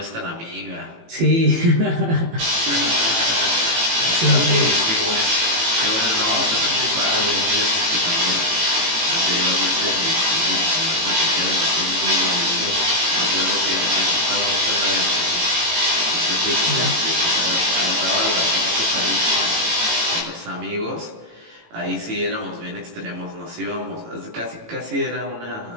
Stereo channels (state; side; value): late; left; 18 ms